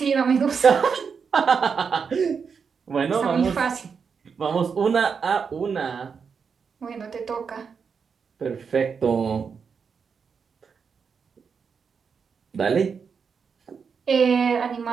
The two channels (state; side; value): quieter; left; 6.0 dB